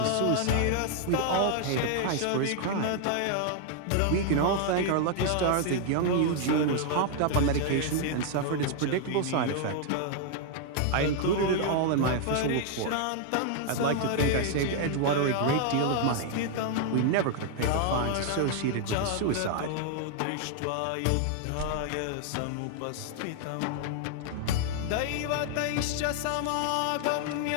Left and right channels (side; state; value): both; different; correlation 0.00